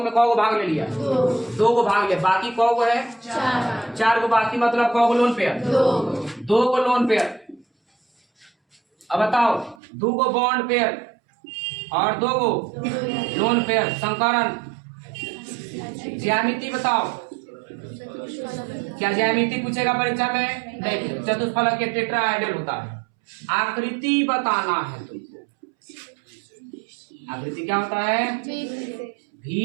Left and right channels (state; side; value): drops out; left; at 9.8 s